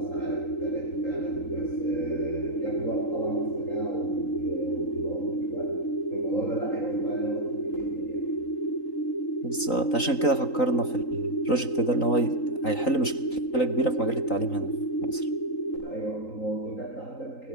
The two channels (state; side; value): late; right; 3.9 ms